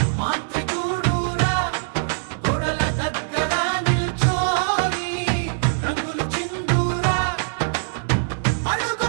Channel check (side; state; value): left; silent; digital silence